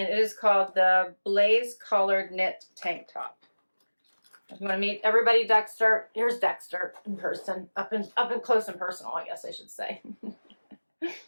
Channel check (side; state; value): both; inverted; correlation -1.00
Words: it is called the Blaise Collared Knit Tank Top. If you want to meet everybody, Dexter, here's Dexter in person, up and close and personal, I guess I should say.